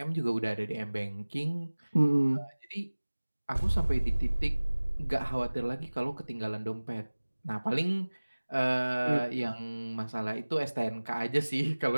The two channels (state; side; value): inverted; both; correlation -1.00